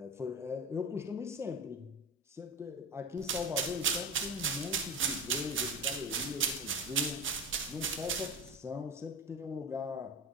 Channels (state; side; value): normal; both; correlation 0.26